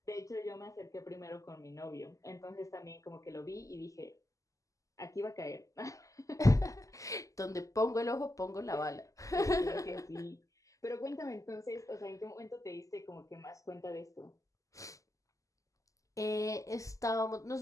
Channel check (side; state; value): right; late; 0.16 ms